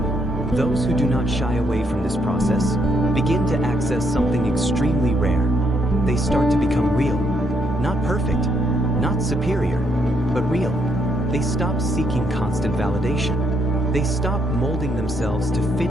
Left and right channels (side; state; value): both; normal; correlation 0.75